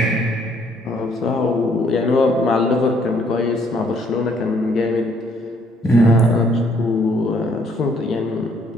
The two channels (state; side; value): normal; both; correlation 0.66